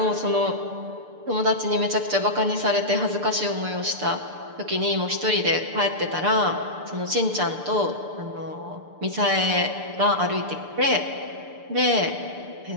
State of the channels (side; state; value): left; late; 6.8 ms